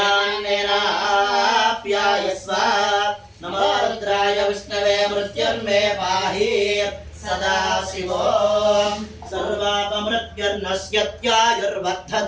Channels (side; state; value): both; identical; correlation 1.00